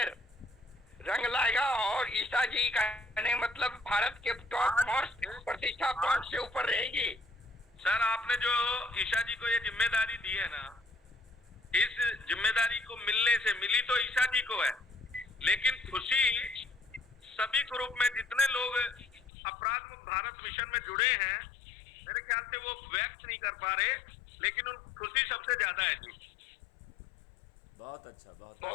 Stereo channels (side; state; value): right; drops out; at 19.3 s